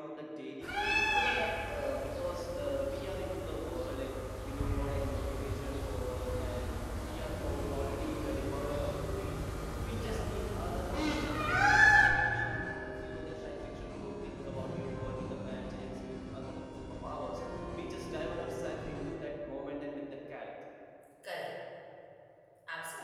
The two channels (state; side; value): identical; both; correlation 1.00